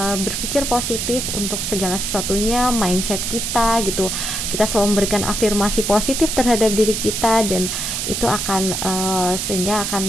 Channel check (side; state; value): right; noise; hiss, 2 dB below the sound